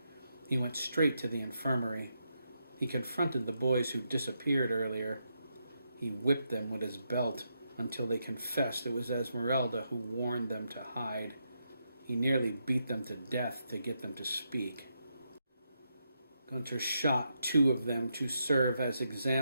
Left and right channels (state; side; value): inverted; both; correlation -0.82